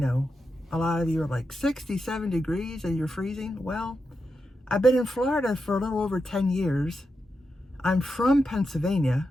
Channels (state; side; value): normal; both; correlation 0.87